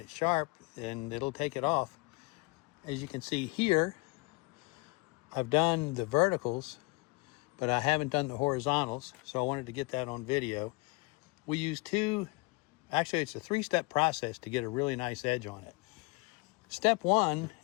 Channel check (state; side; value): quieter; right; 27.2 dB